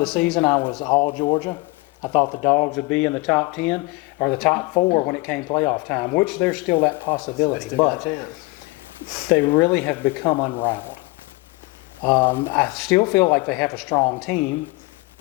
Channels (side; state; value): right; quieter; 23.9 dB